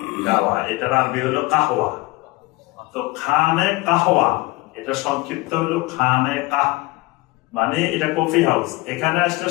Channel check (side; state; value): right; quieter; 21.3 dB